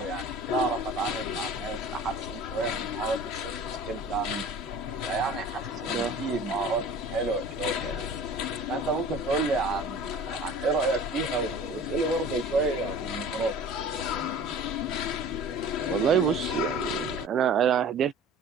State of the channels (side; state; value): both; normal; correlation 0.42